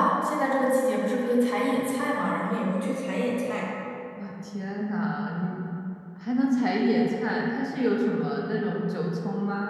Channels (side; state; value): both; identical; correlation 1.00